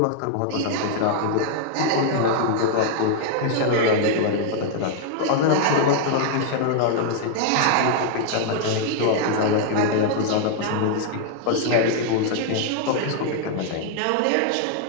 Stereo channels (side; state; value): both; different; correlation 0.00